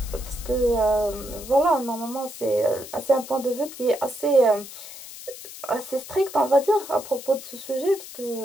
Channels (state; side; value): noise; left; hiss, 14 dB below the sound